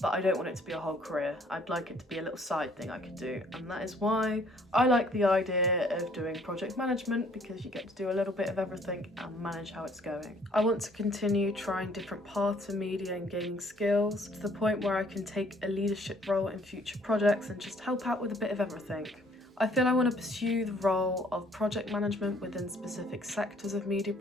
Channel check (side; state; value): both; normal; correlation 0.61